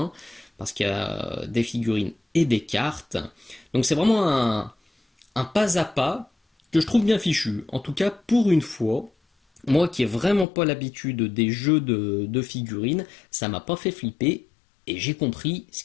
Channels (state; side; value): drops out; right; at 10.5 s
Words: Parce qu'il y a des figurines et des cartes. Donc c'est vraiment un pas à pas que je trouve bien fichu. En tout cas, pour une fois, moi qui n'ai vraiment pas l'habitude des jeux de figurines, ça m'a pas fait flipper et j'ai compris ce